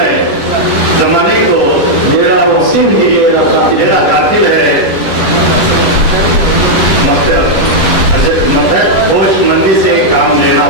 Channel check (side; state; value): right; late; 10 ms